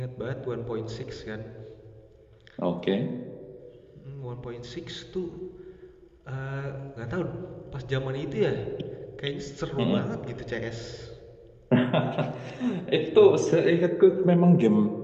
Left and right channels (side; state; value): both; identical; correlation 1.00